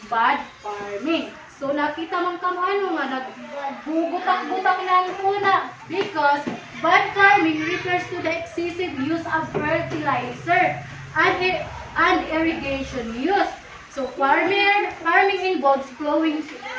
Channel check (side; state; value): both; identical; correlation 1.00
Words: bad farming. So nakita man kamo ano nga nagbubutak-butak na ang tuna because bad farming refers to the excessive use of fertilizer and irrigation use. So farming involves plowing